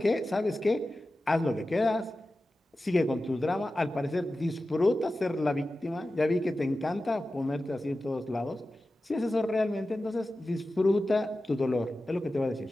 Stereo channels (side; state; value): both; normal; correlation 0.94